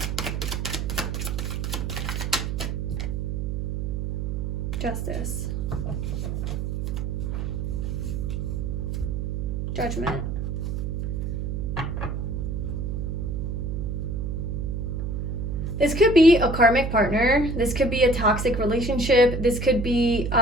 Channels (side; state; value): right; noise; hum, 2 dB below the sound